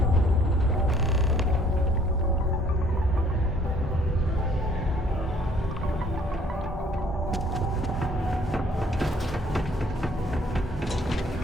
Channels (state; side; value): normal; both; correlation 0.60